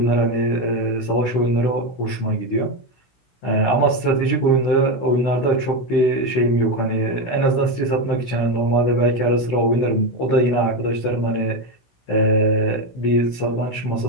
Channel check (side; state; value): right; late; 16 ms